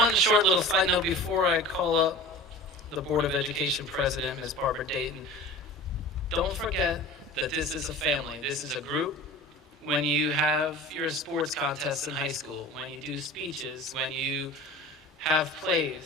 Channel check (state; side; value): normal; both; correlation 0.38